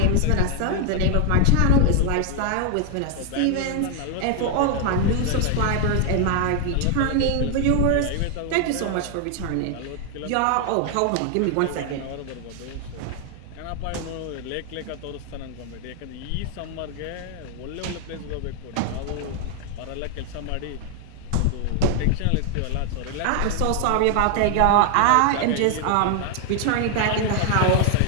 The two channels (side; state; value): both; different; correlation 0.00